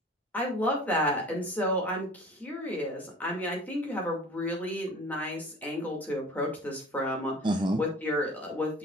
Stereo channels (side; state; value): both; normal; correlation 0.43